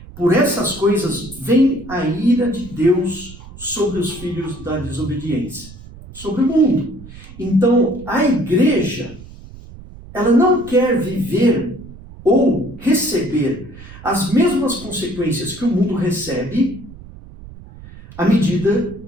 Por essas coisas vem a ira de Deus sobre os filhos da desobediência, sobre o mundo. Então, a igreja, ela não quer viver ou receber as mesmas consequências que o mundo recebe à medida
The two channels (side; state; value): right; noise; rumble, 17 dB below the sound